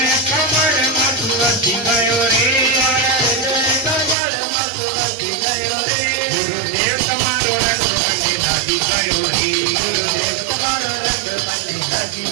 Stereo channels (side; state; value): left; drops out; at 4.2 s